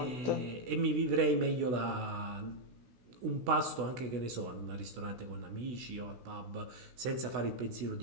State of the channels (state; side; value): late; left; 16 ms